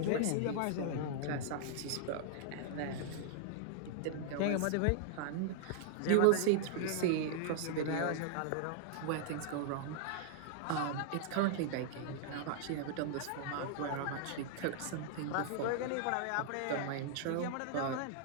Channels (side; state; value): both; different; correlation -0.01